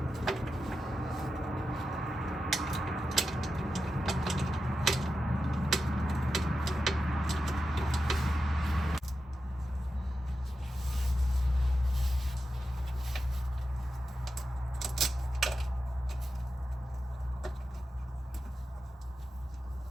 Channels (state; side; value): normal; both; correlation 0.91